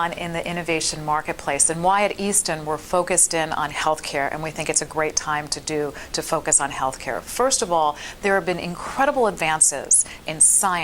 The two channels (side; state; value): both; identical; correlation 1.00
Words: in the innovation marketplace and why at Easton we're focused in on healthcare, and we think it's a great time to focus on healthcare. First of all, there have been incredible advances in